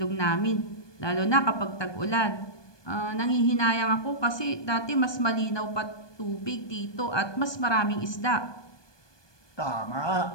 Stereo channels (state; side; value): late; right; 1.2 ms